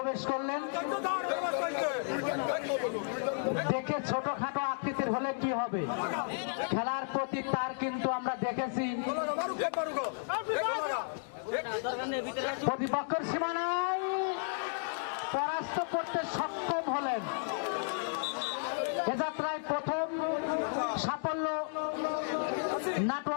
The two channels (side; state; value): right; silent; digital silence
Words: করলেন। দেখে ছোটখাটো আকৃতির হলে কি হবে, খেলার প্রতি তার কিন্তু আমরা দেখেছি প্রতিপক্ষের সীমানায় পরাস্ত করতে সক্ষম হলেন। এ যাত্রায় প্রথম সাফল্য